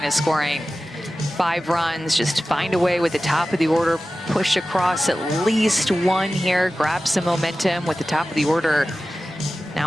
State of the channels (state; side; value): normal; both; correlation 0.95